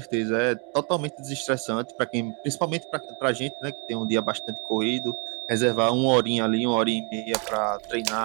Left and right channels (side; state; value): left; quieter; 36.8 dB